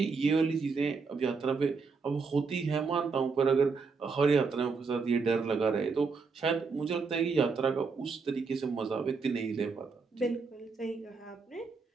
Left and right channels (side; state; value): left; quieter; 4.8 dB